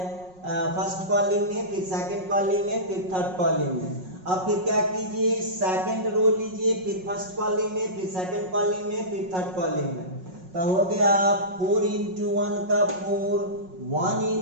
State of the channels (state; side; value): late; left; 5.5 ms